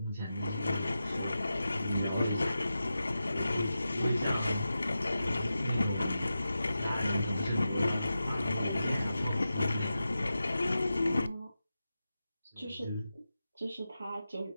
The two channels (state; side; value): inverted; both; correlation -0.92